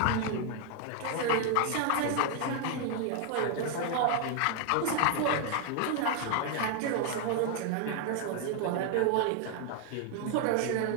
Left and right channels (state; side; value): different; both; correlation 0.00